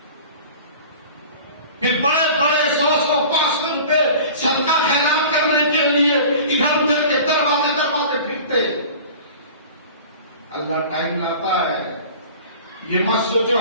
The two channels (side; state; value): both; inverted; correlation -0.41